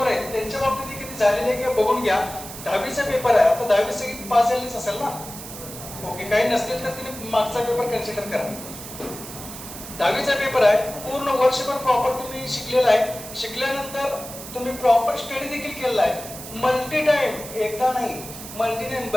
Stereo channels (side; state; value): right; noise; hiss, 12 dB below the sound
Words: आहेत त्यांच्या बाबतीत किती झालेली आहे किंवा बघून घ्या. 10वीचा पेपर आहे, आता 10वी सगळी पास झालीच असेल ना? ओके. काही नसतील तर तिने मागचा पेपर कन्सिडर करा. 10वीचा पेपर आहे, पूर्ण वर्षभर प्रॉपर तुम्ही शिकलेला आहे. शिकल्यानंतर तुम्ही प्रॉपर स्टडी देखील केलेला आहे. मल्टी टाइम, एकदा नाही मल्टी टाइम